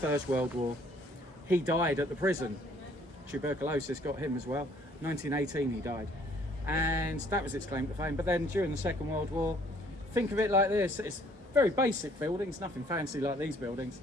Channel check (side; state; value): both; normal; correlation 0.60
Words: World War, he died at the prison. Tuberculosis got him as well. 1918 he died. And that was its claim to fame. But then during the Second World War, think of it like this. It's very basic buildings, nothing fancy like these buildings,